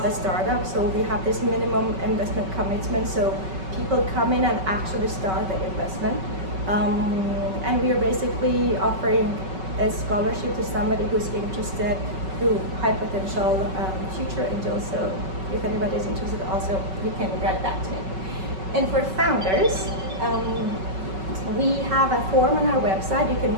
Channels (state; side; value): late; left; 5.3 ms